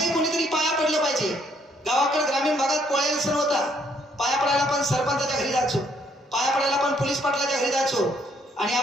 कोणीतरी पाया पडलं पाहिजे. गावाकडे ग्रामीण भागात पोळ्याला सण होता, पाया पडायला पण सरपंचाच्या घरी जायचो, पाया पडायला पण पोलीस पाटलाच्या घरी जायचो, आणि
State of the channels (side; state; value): both; normal; correlation 0.68